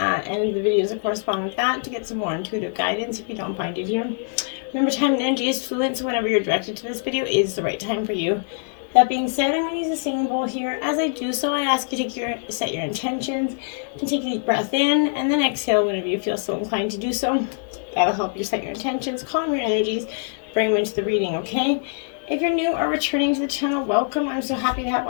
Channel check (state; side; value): silent; right; 63 dB below the other